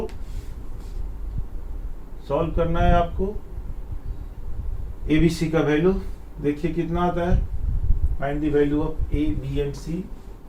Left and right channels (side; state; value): both; identical; correlation 1.00